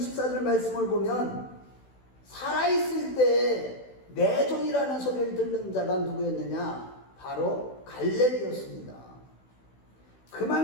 말씀을 보면 살아있을 때 내 종이라는 소리를 듣는 자가 누구였느냐? 바로 갈렙이었습니다.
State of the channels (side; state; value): right; late; 16 ms